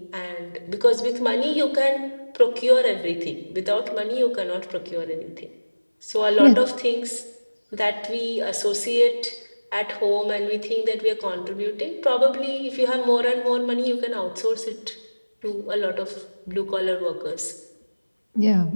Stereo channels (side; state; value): both; inverted; correlation -1.00